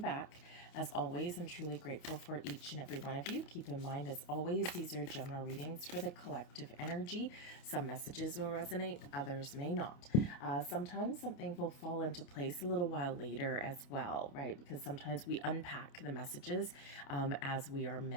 As always, I'm truly grateful for each and every one of you. Keep in mind, as always, these are general readings for the collective energy. Some messages will resonate, others may not. Sometimes something will fall into place a little while later as well, right? Because sometimes we unpack the messages as we are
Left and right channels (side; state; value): right; late; 29 ms